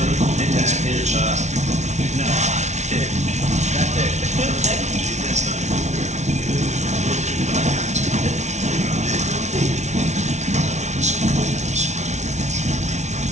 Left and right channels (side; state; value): left; late; 0.33 ms